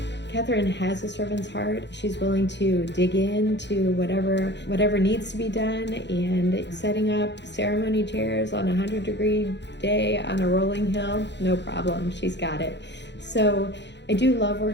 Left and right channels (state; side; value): late; right; 0.51 ms